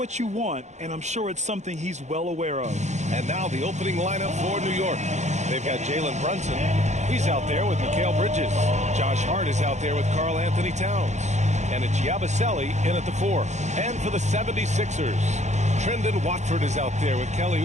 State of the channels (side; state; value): left; late; 0.33 ms